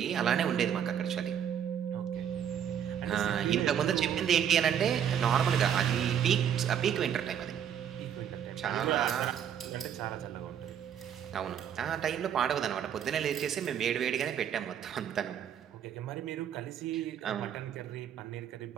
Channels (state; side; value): quieter; left; 9.0 dB